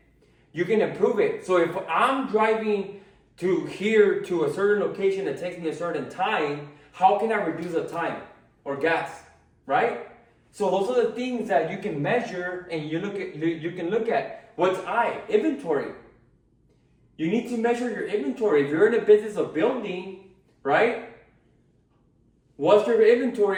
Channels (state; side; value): identical; both; correlation 1.00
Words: you can improve it. So if I'm driving to here to a certain location that takes me a certain time, how can I reduce the time or gas, right? So those are the things that you can measure and you can look at. What's inventory. You need to measure your inventory. If you're in the business of building, right? What's your